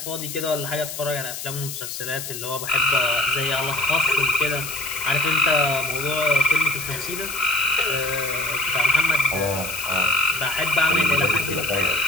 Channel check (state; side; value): noise; left; hiss, 8 dB below the sound